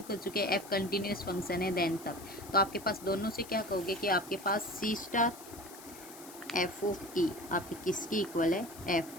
कर चुके हैं, एफ कंटिन्यूस फंक्शन है देन तक, तो आपके पास दोनों से क्या कहोगे कि आपके पास सी स्टार एफ ऑफ ई आपके किसकी इक्वल है,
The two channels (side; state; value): left; noise; hiss, 17 dB below the sound